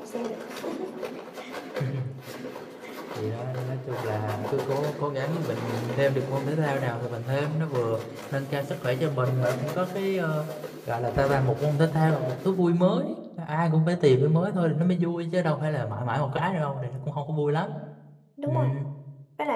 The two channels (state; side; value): identical; both; correlation 1.00